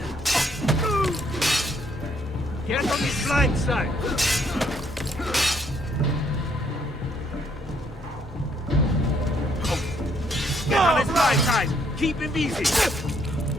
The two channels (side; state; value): both; normal; correlation 0.69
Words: Get on his blind side! Get on his blind side! Keep him busy!